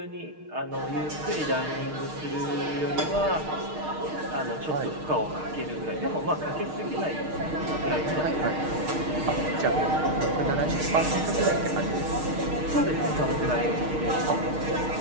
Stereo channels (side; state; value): left; late; 6.5 ms